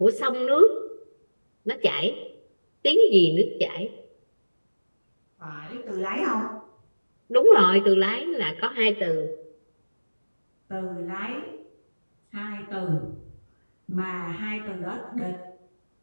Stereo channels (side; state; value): both; inverted; correlation -1.00